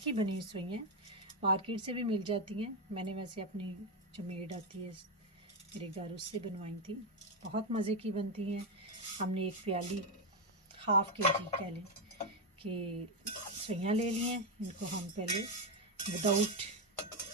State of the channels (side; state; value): both; normal; correlation 0.07